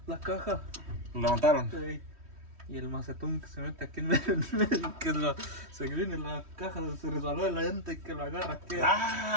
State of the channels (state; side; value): late; left; 3.1 ms